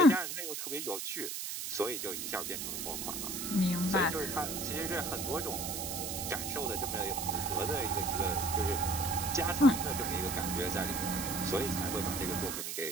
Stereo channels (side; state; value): right; noise; hiss, 4 dB below the sound